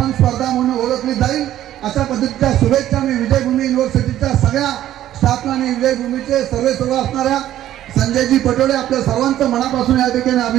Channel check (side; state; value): left; quieter; 12.6 dB